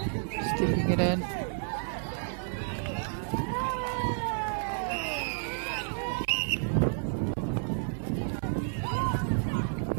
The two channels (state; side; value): silent; left; digital silence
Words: Stepping it in.